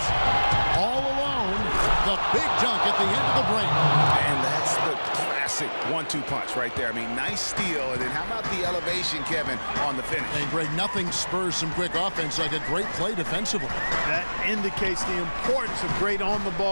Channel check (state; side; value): inverted; both; correlation -1.00